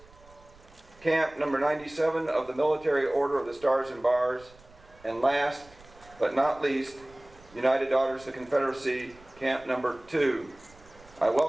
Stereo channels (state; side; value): noise; right; rumble, 25 dB below the sound